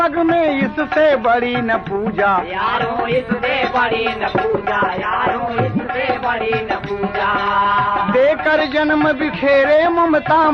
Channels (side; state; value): both; identical; correlation 1.00